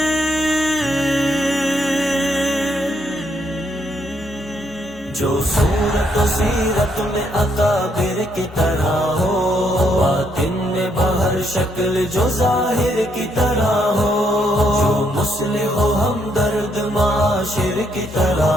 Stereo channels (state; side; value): normal; both; correlation 0.74